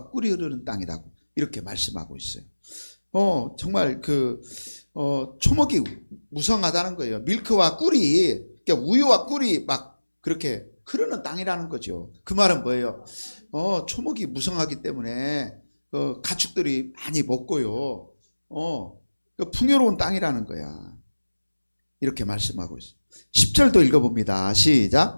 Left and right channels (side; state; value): both; inverted; correlation -1.00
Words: 꿀이 흐르는 땅이라고 이렇게 말씀하고 있어요. 정말 초목이 무성하다는 거예요. 밀크와 꿀이, 그러니까 우유와 꿀이 막 그렇게 흐르는 땅이라는 거죠. 그 말은 뭐예요? 초목이 무성하기 때문에 가축들이 많이 먹고요. 풍요로운 땅이라는 거야. 이렇게 말씀하고 있어요. 10절도 읽어봅니다.